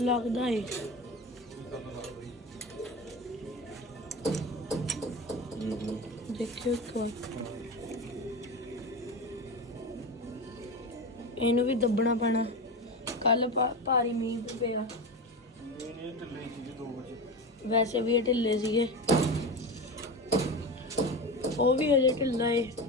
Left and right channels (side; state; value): both; normal; correlation 0.24